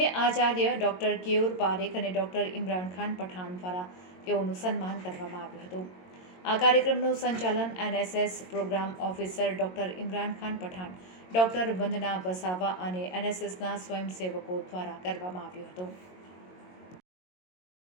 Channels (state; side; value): late; right; 22 ms